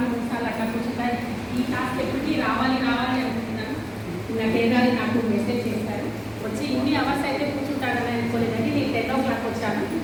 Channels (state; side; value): identical; both; correlation 1.00